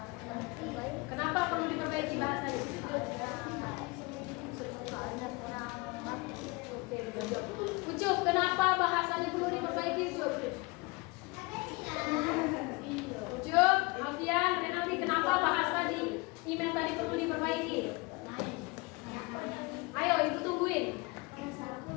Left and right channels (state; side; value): quieter; right; 25.8 dB